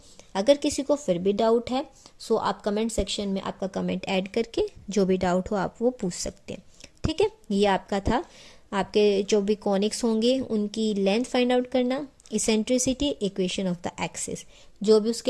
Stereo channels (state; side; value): identical; both; correlation 1.00